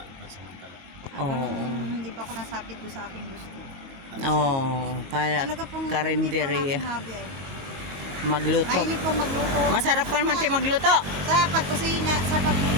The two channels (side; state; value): left; late; 21 ms